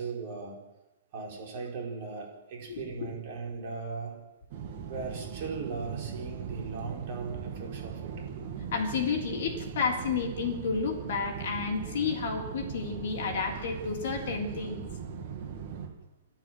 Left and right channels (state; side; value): inverted; both; correlation -0.44